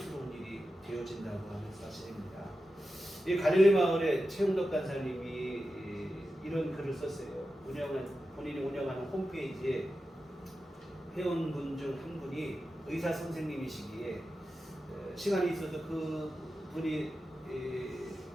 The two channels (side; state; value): both; normal; correlation 0.92